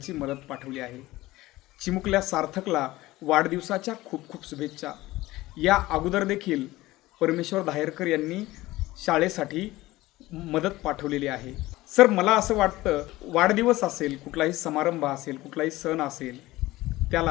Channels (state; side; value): quieter; right; 18.1 dB